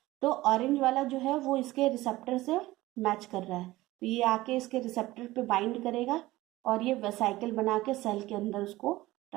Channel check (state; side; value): quieter; left; 17.9 dB